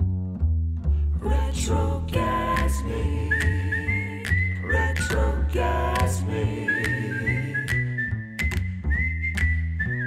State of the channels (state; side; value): identical; both; correlation 1.00